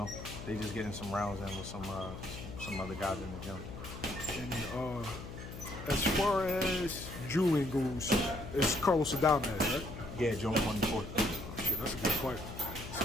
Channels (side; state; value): left; noise; hum, 10 dB below the sound